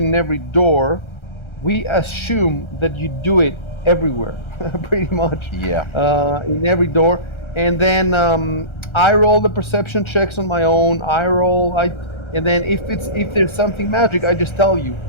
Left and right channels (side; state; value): right; late; 1.3 ms